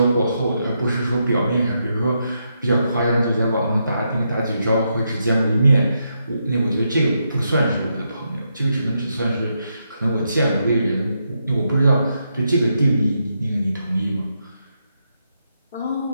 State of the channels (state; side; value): inverted; both; correlation -0.82